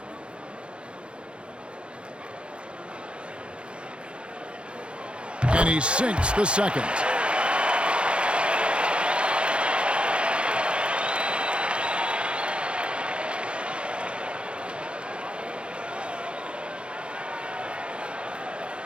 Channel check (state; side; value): late; left; 0.057 ms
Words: And he sinks the second.